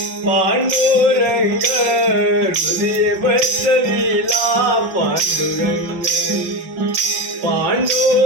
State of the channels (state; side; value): late; left; 5.5 ms